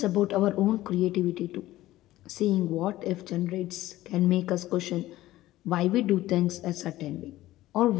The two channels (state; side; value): quieter; right; 15.9 dB